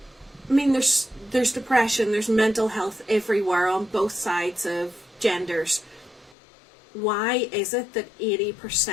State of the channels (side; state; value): right; drops out; at 6.4 s